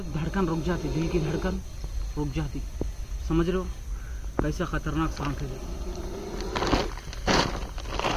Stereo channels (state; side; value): identical; both; correlation 1.00